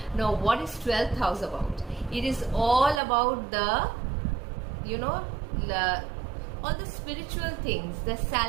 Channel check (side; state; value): left; drops out; at 3.0 s